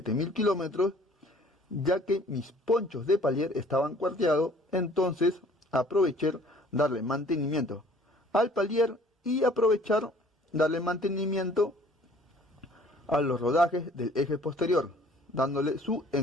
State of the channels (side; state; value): both; normal; correlation 0.54